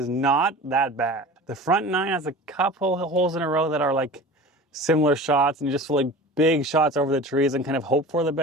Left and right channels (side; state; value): both; normal; correlation 0.37